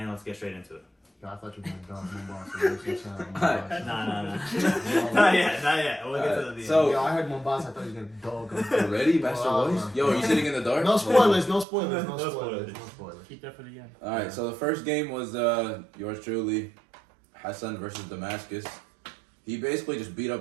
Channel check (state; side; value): drops out; left; at 11.7 s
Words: let's get straight into it. I thought you were going to dog Mombasa. Nah. Not yet. We'll get to the So, I heard Mombasa, I thought you were going to dog him. Ready, Master Boys? Yo, are you sitting in the dark? No spoilers. No spoilers. Keep that for the end. Alright, so the first game was yours truly, Hassan versus Damascus. He basically just beat